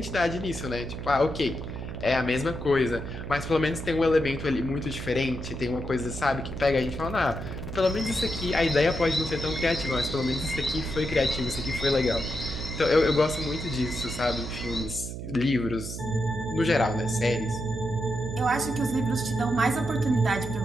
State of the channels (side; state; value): right; noise; hum, 8 dB below the sound